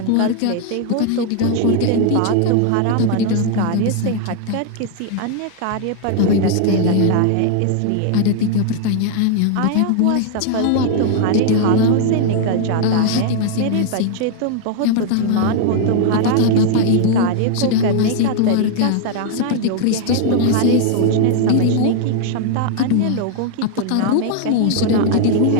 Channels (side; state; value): both; different; correlation 0.00